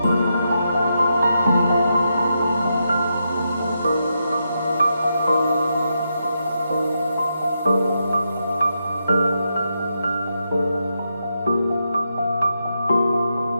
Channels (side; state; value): both; inverted; correlation -0.84